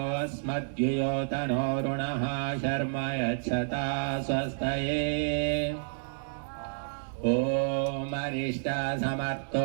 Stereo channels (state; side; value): silent; left; digital silence